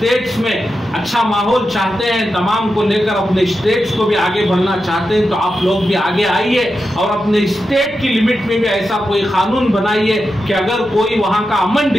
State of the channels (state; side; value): noise; right; hum, 25 dB below the sound